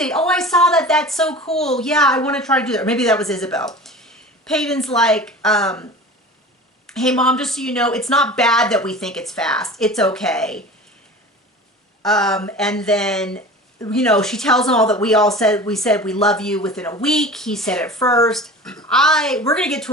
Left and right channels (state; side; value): normal; both; correlation 0.37